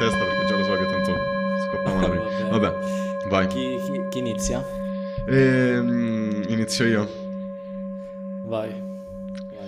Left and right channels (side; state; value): both; identical; correlation 1.00